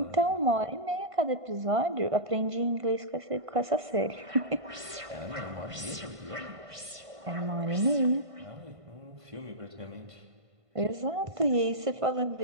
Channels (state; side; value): late; left; 1.5 ms